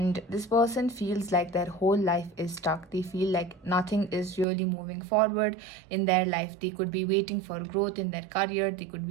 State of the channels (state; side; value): drops out; left; at 4.5 s